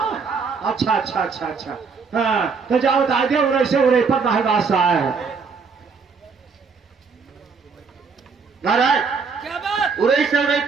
अच्छा अच्छा अच्छा अच्छा, हाँ तो जाओ बता दे, उरे से उरे पर महबास आया है। महाराज क्या बात? उड़ई से उड़ई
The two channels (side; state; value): left; quieter; 5.2 dB